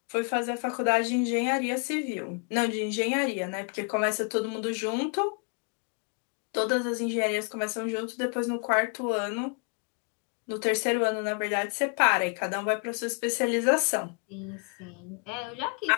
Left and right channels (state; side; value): quieter; right; 38.8 dB